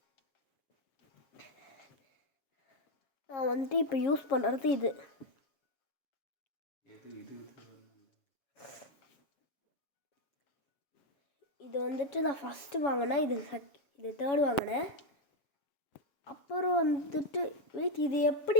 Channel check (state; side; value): late; right; 7.2 ms